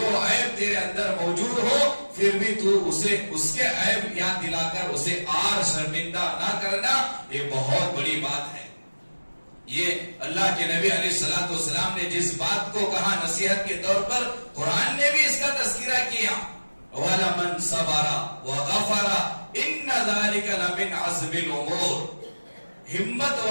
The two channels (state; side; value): inverted; both; correlation -1.00